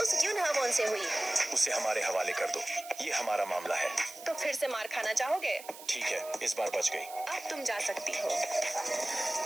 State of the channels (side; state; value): right; noise; hiss, 15 dB below the sound